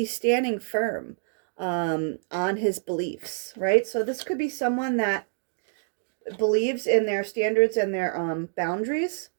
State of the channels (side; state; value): left; silent; digital silence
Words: standing firm on his beliefs, right? So this could be someone that believes in their standards and their boundaries.